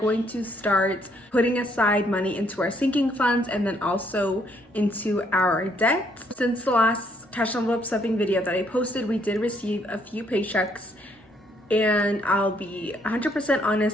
to start putting aside money into our sinking funds and then also into our debt. Since the last cash envelope stuffing video that I posted, we did receive a few paychecks. And I'll be 100%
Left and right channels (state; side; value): normal; both; correlation 0.69